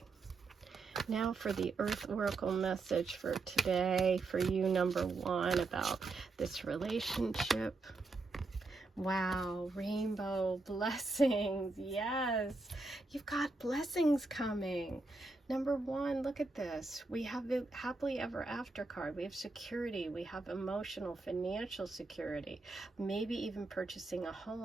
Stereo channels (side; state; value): left; quieter; 3.5 dB